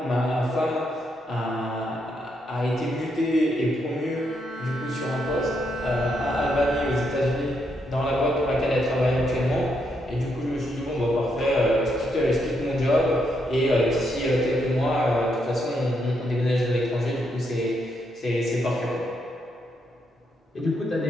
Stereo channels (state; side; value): normal; both; correlation 0.78